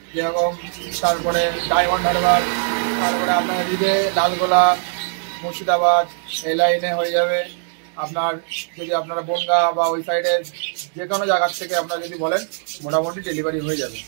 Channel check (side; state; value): left; silent; 65 dB below the other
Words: যেরকম, তারপরে ডায়মন্ড হারবার, তারপরে আপনার এদিকে লালগোলা, মুর্শিদাবাদ, এই লাইনে হয়ে যাবে আপনার। যদি আপনারা বনগা বা ওই সাইডে যে কোনো জায়গার থেকে আপনারা যদি বলেন মোটামুটি ডেলিভারি হয়ে যাবে।